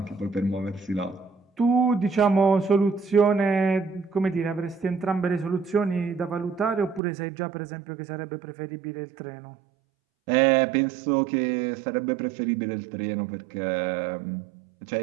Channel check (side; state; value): left; drops out; at 7.0 s